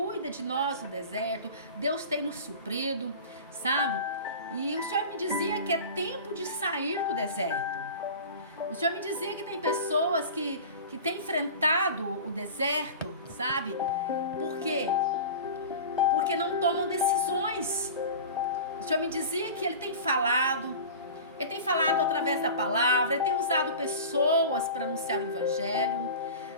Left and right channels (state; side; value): inverted; both; correlation -0.34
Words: de nós no deserto. Deus tem nos suprido, sabe? E o Senhor me dizia que é tempo de sair do deserto. O Senhor me dizia que tem pessoas que têm enfrentado o deserto, sabe? Por quê? Porque não tomam decisões. O Senhor me dizia que Ele tem falado através da palavra, Ele tem usado pessoas para anunciar o Evangelho,